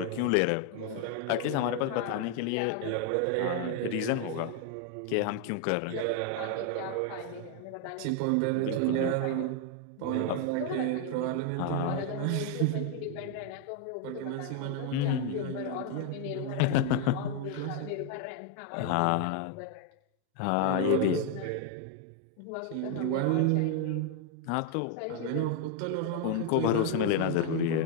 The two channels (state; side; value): different; both; correlation 0.01